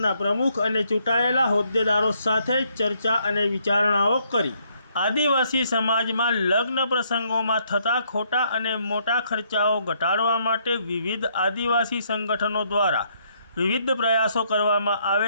પ્રમુખ અને ચૂંટાયેલા હોદ્દેદારો સાથે ચર્ચા અને વિચારણાઓ કરી। આદિવાસી સમાજમાં લગ્ન પ્રસંગોમાં થતા ખોટા અને મોટા ખર્ચાઓ ઘટાડવા માટે વિવિધ આદિવાસી સંગઠનો દ્વારા વિવિધ પ્રયાસો કરવામાં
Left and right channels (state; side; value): inverted; both; correlation -0.71